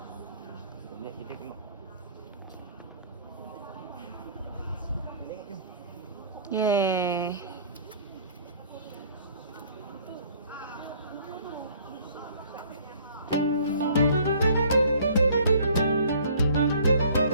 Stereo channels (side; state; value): both; inverted; correlation -0.54